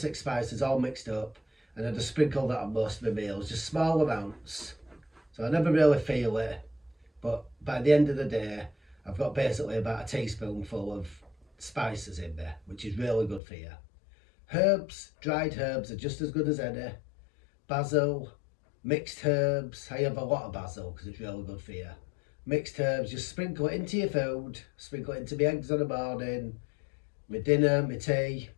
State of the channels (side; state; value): right; drops out; at 13.4 s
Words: spices all mixed up, and I just sprinkle that on most of my meals, just small amounts. So I never really feel it, but by the end of the day, I've got basically about a teaspoonful of spices in there, which is really good for you. Herbs, dried herbs are just as good as any. Basil, mixed herbs. I have a lot of basil because it's really good for you. Mixed herbs, just sprinkle it into your food, sprinkle it into my eggs on the morning, my dinner, my tea.